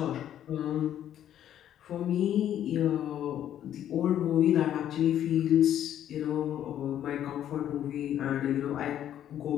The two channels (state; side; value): quieter; right; 10.9 dB